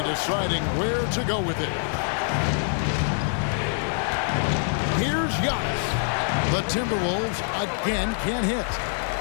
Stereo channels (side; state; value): right; silent; 62 dB below the other